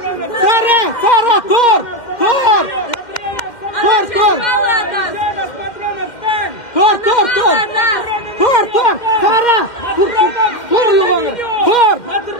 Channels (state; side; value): late; right; 2.1 ms